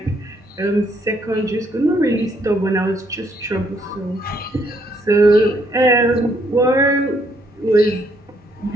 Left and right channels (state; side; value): normal; both; correlation 0.70